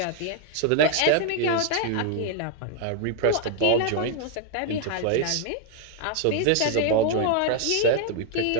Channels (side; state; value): both; different; correlation 0.00